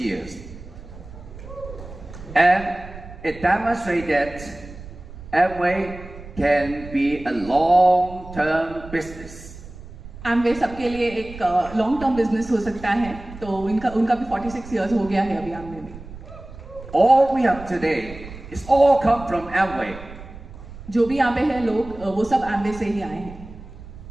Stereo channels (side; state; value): right; noise; rumble, 15 dB below the sound